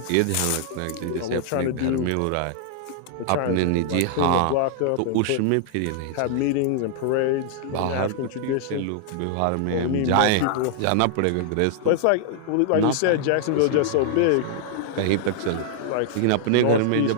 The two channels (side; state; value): both; different; correlation -0.01